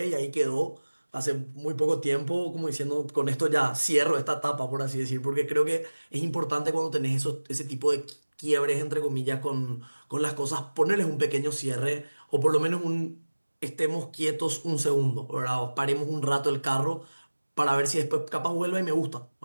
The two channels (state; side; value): inverted; both; correlation -1.00